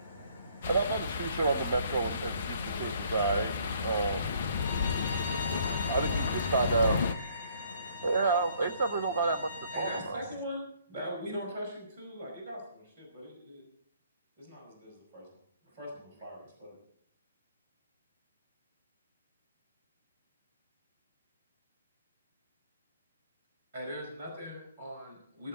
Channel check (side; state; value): both; inverted; correlation -0.62